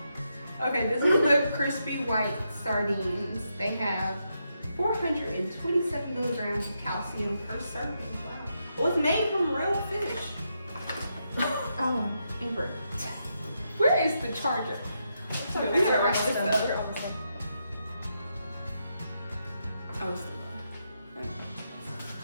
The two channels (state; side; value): inverted; both; correlation -0.82